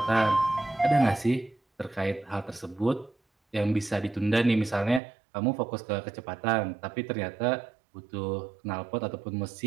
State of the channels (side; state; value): left; drops out; at 5.0 s